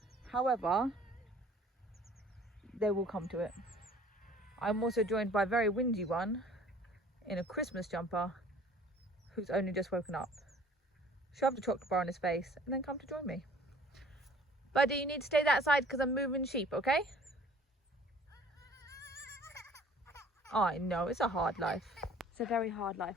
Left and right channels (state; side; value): normal; both; correlation 0.52